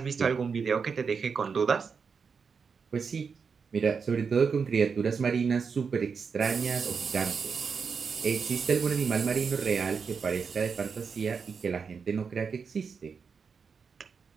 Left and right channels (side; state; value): left; quieter; 5.7 dB